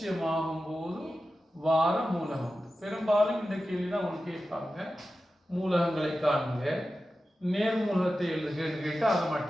ஆகும்போது வார மூலகம். பெரும்பாலும் இந்த கேள்வி தான் உங்களுக்கு கேட்பாங்க, மூலகங்களை காணுங்க, நேர் மூலகத்தை எழுதுகன்னு கேட்டால் அதை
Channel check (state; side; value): normal; both; correlation 0.93